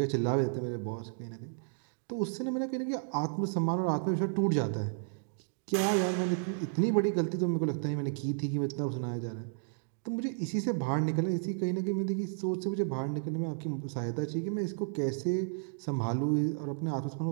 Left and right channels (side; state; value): left; silent; digital silence